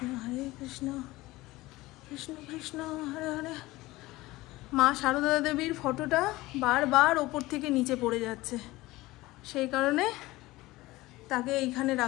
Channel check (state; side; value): quieter; right; 19.2 dB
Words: কৃষ্ণ কৃষ্ণ হরে হরে। মা সারদা দেবীর ফটোটা বারবার ওপর থেকে নিচে পড়ে যাচ্ছে, সেই কারণে তাকে এইখানে